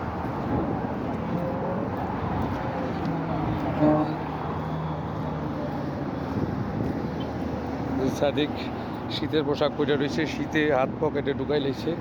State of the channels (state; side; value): identical; both; correlation 1.00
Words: সাদিক শীতের পোশাক পরে রয়েছে, শীতে হাত পকেটে ঢুকাই লেছে।